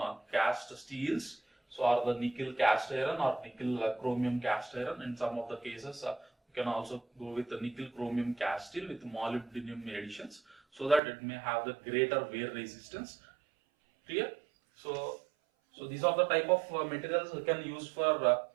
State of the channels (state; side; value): drops out; left; at 11.0 s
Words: cast steels. So or the nickel cast iron or nickel chromium cast iron. In some of the cases you can also go with the nickel chromium cast steel with molybdenum additions, so that it may have the greater wear resistance. Clear? So these are the type of materials we can use for